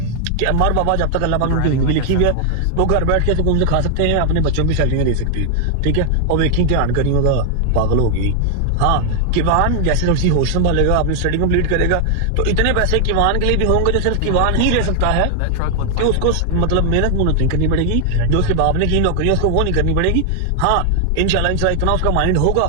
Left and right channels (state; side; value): different; both; correlation 0.00